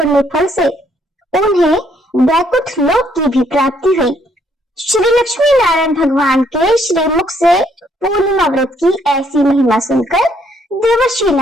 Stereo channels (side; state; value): both; normal; correlation 0.69